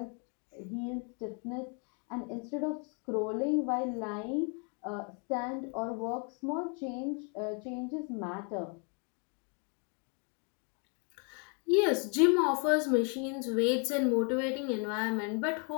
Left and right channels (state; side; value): quieter; right; 37.7 dB